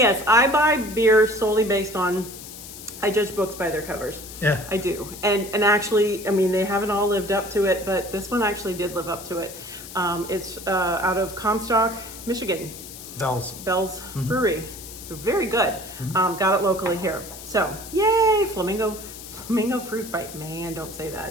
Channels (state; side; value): noise; left; hiss, 13 dB below the sound